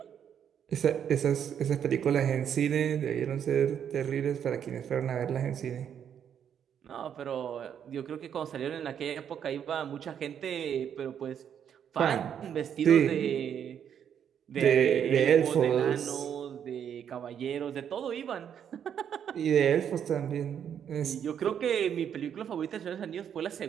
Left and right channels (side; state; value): left; quieter; 8.6 dB